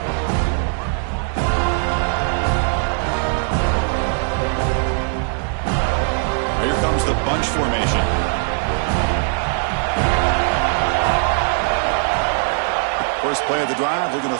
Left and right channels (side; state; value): left; silent; 55 dB below the other